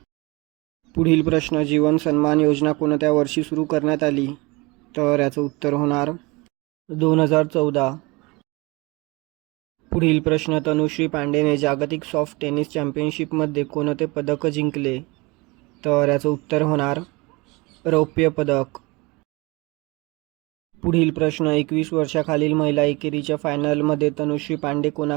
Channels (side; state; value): left; quieter; 25.2 dB